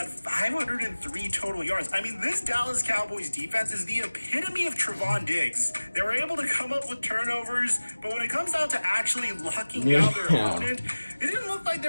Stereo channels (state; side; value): inverted; both; correlation -1.00